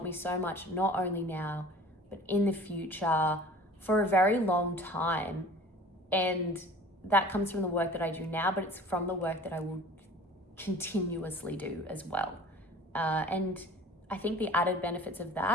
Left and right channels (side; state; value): both; normal; correlation 0.45